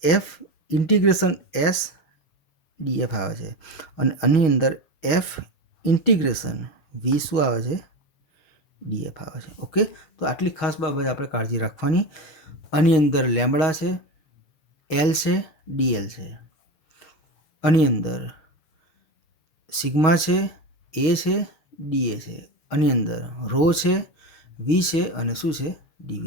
એફ ઇન્ટિગ્રેશન એસ ડીએફ આવે છે. અને આની અંદર એફ ઇન્ટિગ્રેશન વી શું આવે છે? ડીએફ આવે છે. ઓકે, તો આટલી ખાસ બાબત આપણે કાળજી રાખવાની. આની અંદર લેમ્બડા છે, એલ છે, ડીએલ છે. આની અંદર સિગ્મા છે, એ છે, ડીએ છે. આની અંદર રો છે, વી છે અને શું છે?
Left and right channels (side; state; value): right; late; 6.4 ms